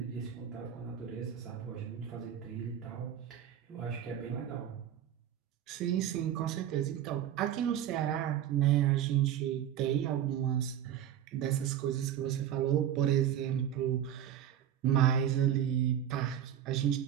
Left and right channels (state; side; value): quieter; left; 10.2 dB